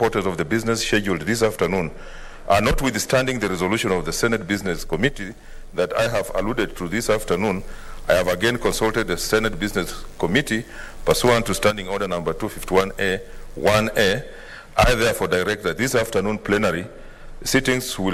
of the business scheduled this afternoon, and notwithstanding the resolution of the Senate Business Committee that I have alluded to this afternoon, I have again consulted the Senate Business Committee pursuant to Standing Order number 251A 1A. I therefore direct that this afternoon plenary sittings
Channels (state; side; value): identical; both; correlation 1.00